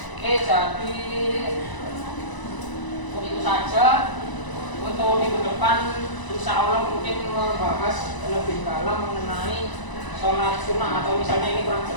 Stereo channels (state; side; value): late; right; 1.0 ms